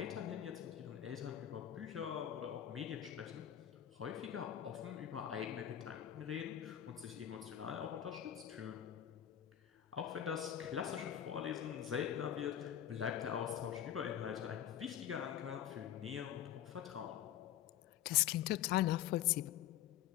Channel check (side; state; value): right; quieter; 10.7 dB